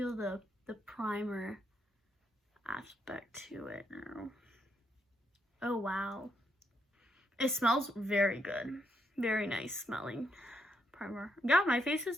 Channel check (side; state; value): both; normal; correlation 0.78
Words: the primer aspect to it now. Oh, wow. It smells very good. Very nice smelling primer. Yeah, my face is